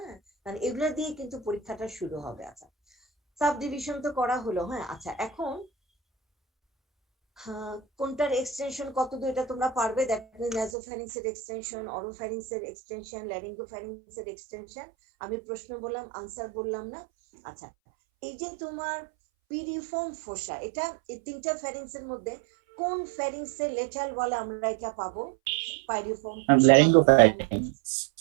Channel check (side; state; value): left; drops out; at 10.7 s